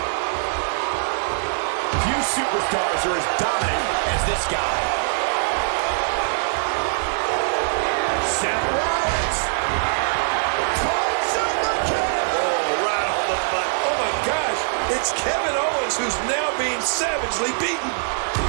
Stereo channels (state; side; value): silent; left; digital silence